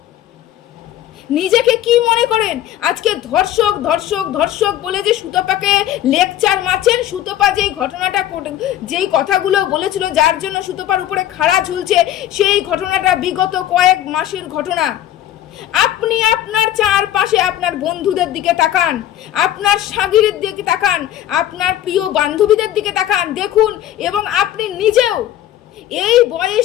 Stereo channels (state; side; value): quieter; right; 12.3 dB